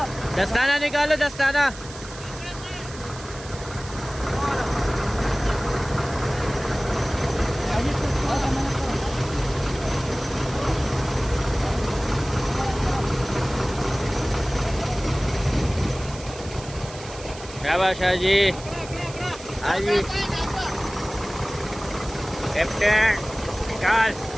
दस्ताना निकालो, दस्ताना। शाबाश जी, हाँ जी कैप्टन, निकाल,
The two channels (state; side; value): noise; right; hiss, 15 dB below the sound